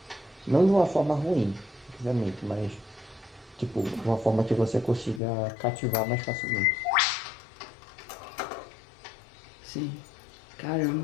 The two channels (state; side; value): drops out; right; at 5.2 s